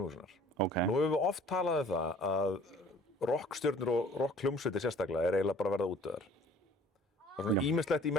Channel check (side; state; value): both; normal; correlation 0.52